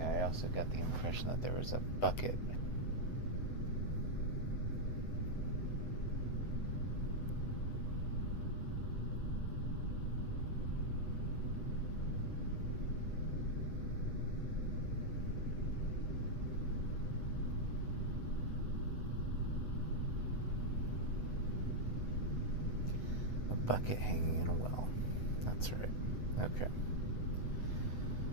I also got the impression that there was a bucket. Bucket hanging in a well. That's right. Okay.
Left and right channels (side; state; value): right; late; 8.0 ms